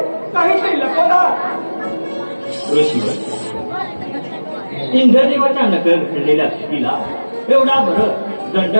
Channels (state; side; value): inverted; both; correlation -1.00